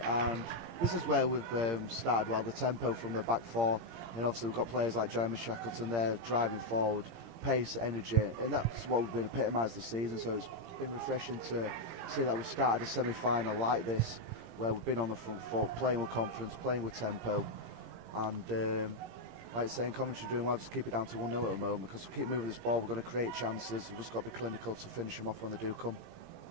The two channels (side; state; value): left; late; 17 ms